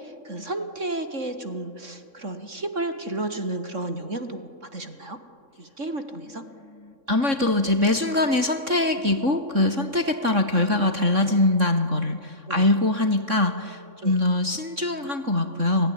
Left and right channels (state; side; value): late; left; 3.6 ms